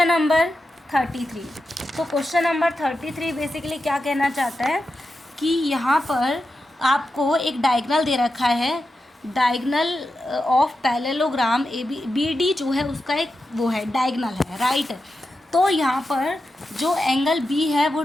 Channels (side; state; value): both; normal; correlation 0.89